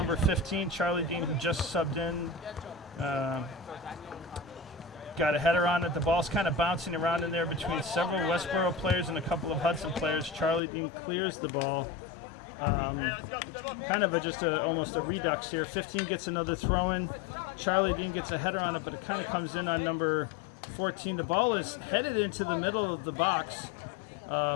15, Charlie Dean, who just subbed in. Got a header on it. The ball's kind of bouncing around in there between several Westborough players and a couple of Hudson players. Charlie Dean clears the ball. Kind of almost a redux here. 15 gets another throw in. Charlie Dean gets a header on it, but it kind of comes in on number 14. The ball is headed into the middle of the box.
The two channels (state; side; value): drops out; right; at 10.6 s